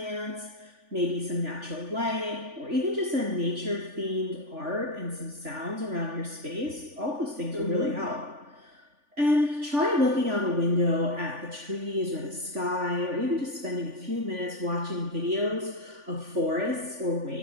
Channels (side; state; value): left; late; 3.5 ms